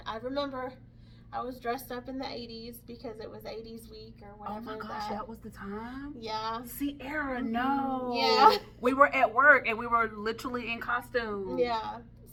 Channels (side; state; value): both; identical; correlation 1.00